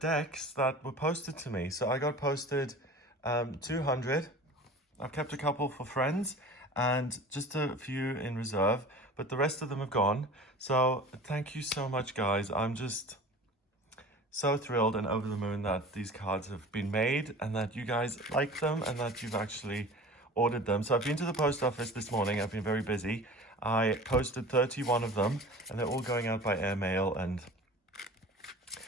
that were posted to me. So I got posted 200. I've kept a couple for friends and just a few in reserve, but the rest of them have gone. So thank you so much, guys. I'm just so thrilled and over the moon that these cards have been made and that you guys like them and that you've actually ordered them. So I've been to the post office this morning. I've been very busy. I posted 31 of them and they're all going out by airmail, and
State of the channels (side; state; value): both; normal; correlation 0.39